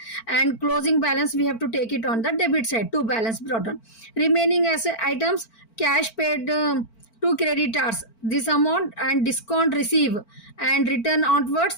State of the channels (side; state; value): right; late; 4.5 ms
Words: and closing balance we have to take it on the debit side. To balance brought down. Remaining as items, cash paid to creditors, this amount, and discount receive and return